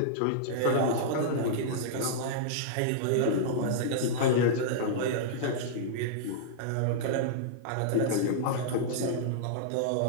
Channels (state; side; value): different; both; correlation -0.02